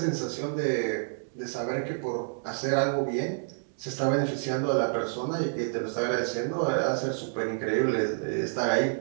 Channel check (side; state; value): left; silent; digital silence